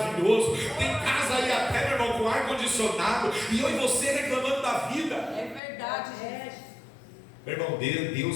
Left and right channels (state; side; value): drops out; right; at 5.6 s